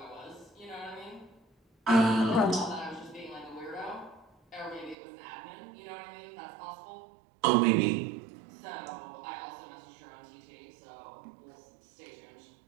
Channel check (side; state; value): left; drops out; at 5.0 s